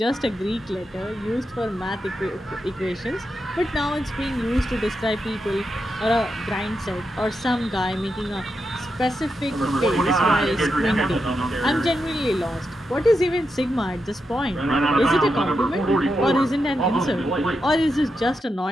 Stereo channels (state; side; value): normal; both; correlation 0.86